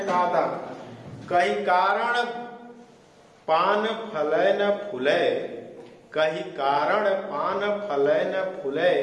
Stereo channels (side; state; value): both; identical; correlation 1.00